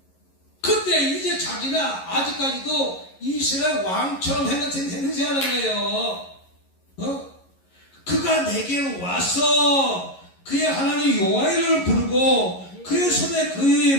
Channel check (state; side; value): late; right; 11 ms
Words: 근데 이제 자기는 아직까지도 이스라엘 왕처럼 행세하는 거예요. 그가 내게로 와서 그의 하나님 여호와를 부르고 그의 손에